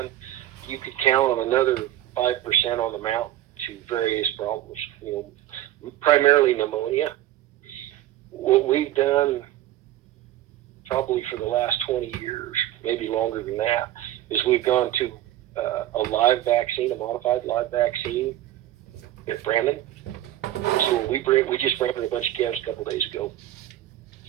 You could count on another 5% on the mountain to various problems. Primarily pneumonia. What we've done probably for the last 20 years, maybe longer than that, is we've gone to a live vaccine, a modified live vaccine at Brandon. So we just branded a bunch of calves a couple days ago.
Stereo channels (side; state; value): left; quieter; 13.6 dB